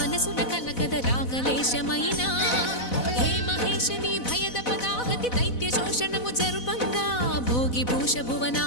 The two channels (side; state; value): right; late; 4.0 ms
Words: కలకద రాగలేశమైనా హే మహేశని భయద పదాహతి దైత్య శోషణము జరుపంగా భోగి భూష